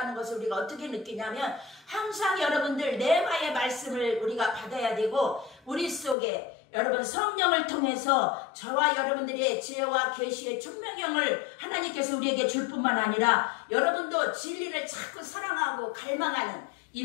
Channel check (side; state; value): right; drops out; at 6.2 s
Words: 것을 우리가 어떻게 느끼냐면 항상 여러분들 레마의 말씀을 우리가 받아야 되고 우리 속에 여러분 성령을 통해서 저와 여러분들의 지혜와 계시의 총명형을 하나님께서 우리에게 줄 뿐만 아니라 여러분도 진리를 자꾸 사랑하고 갈망하는